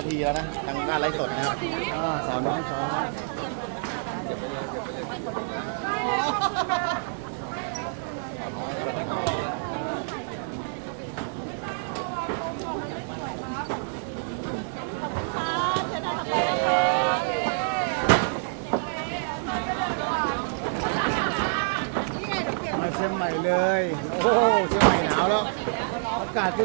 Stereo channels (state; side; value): silent; left; digital silence